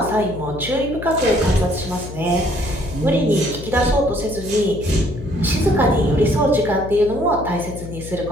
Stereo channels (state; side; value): noise; left; hum, 11 dB below the sound